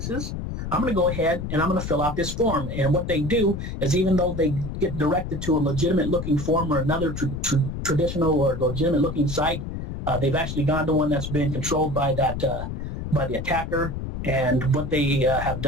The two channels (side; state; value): left; noise; rumble, 6 dB below the sound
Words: I'm going to go ahead and I'm going to fill out this form. And what they do is, even though they get directed to a legitimate looking form or another traditional or legitimate looking site, they've actually gone to one that's been controlled by by the attacker. And what they have